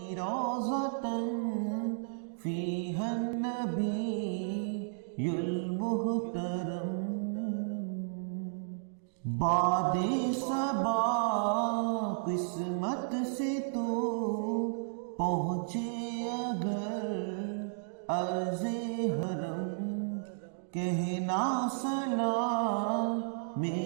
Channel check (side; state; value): left; silent; digital silence